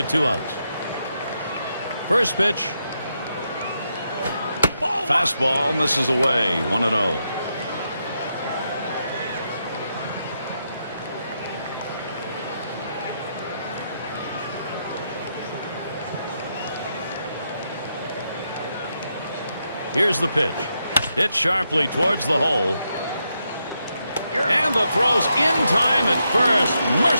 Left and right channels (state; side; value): inverted; both; correlation -0.82